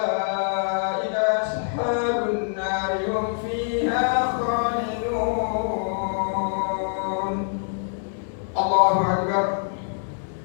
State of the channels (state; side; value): silent; right; 62 dB below the other